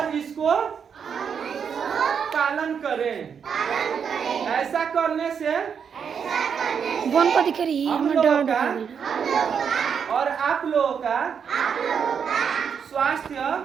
इसको पालन करें। ऐसा करने से बोन को दिख रही हम लोगों का और आप लोगों का स्वास्थ्य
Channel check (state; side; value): quieter; left; 7.0 dB